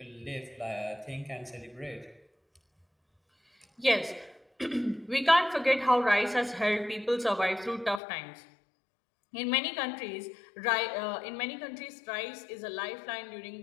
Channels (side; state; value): right; drops out; at 8.0 s